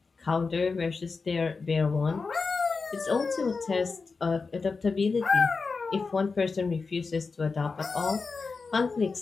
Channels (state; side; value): quieter; right; 4.5 dB